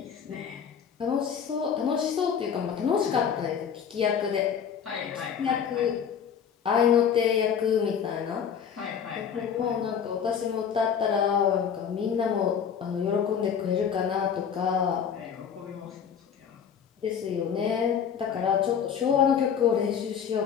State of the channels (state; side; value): quieter; right; 7.6 dB